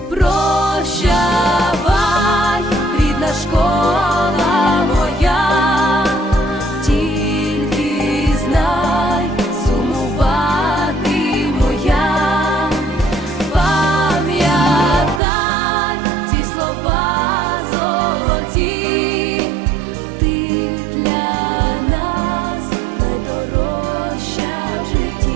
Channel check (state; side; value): drops out; left; at 15.2 s